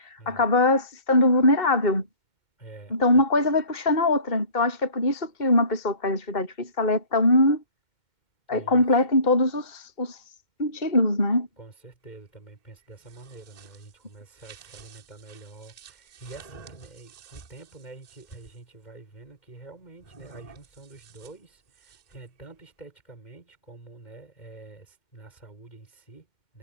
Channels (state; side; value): late; right; 2.1 ms